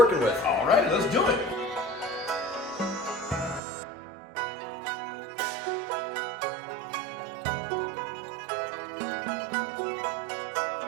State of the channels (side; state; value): left; drops out; at 3.6 s